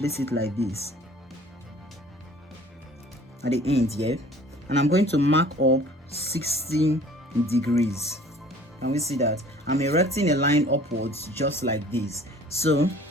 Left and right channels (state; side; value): normal; both; correlation 0.50